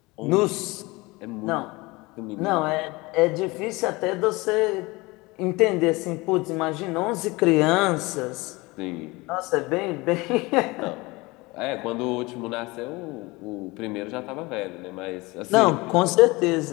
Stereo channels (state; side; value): quieter; right; 23.2 dB